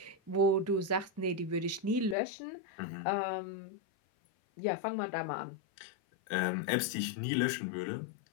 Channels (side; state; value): right; drops out; at 2.1 s